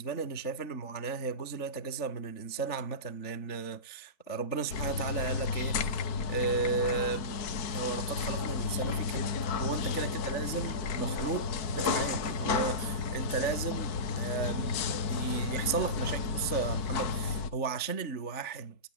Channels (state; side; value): late; right; 3.5 ms